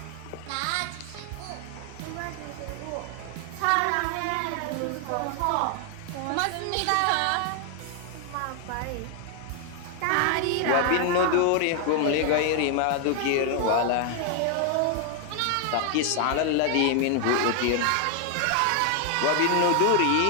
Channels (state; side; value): different; both; correlation 0.00